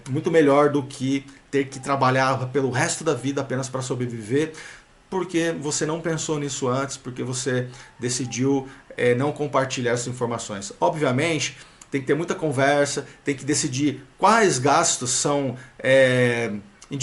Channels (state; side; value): identical; both; correlation 1.00